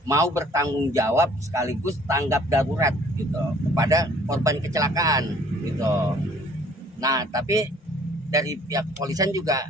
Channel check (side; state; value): both; normal; correlation 0.56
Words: mau bertanggung jawab sekaligus tanggap darurat gitu kepada korban kecelakaan gitu. Nah, tapi dari pihak kepolisian